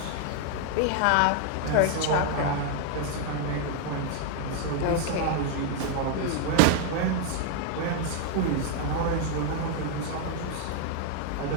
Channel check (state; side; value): different; both; correlation 0.00